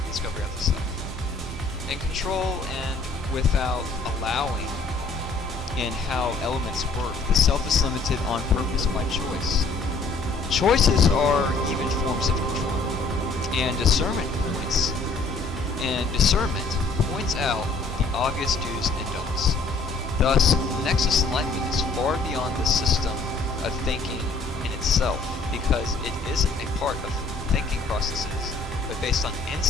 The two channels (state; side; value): quieter; right; 3.6 dB